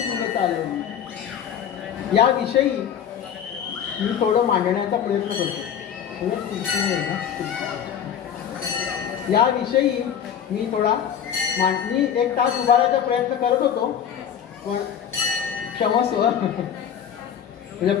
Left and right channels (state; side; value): quieter; right; 8.7 dB